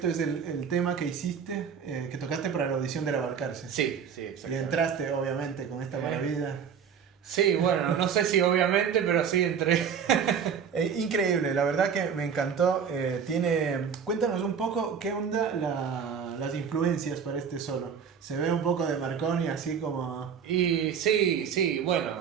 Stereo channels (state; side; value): quieter; left; 7.1 dB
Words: es el tema que hiciste, que tocaste para la audición de La Balcarce. Sí, Y exactamente. entraste, obviamente, con esta maravilla. Sí, bueno, no sé si obviamente, pero sí entré. Increíble, la verdad que me encantó. Cuéntanos un poco qué onda las influencias para este solo. Se ve un poco de Marconi, así como... Y sí, bueno,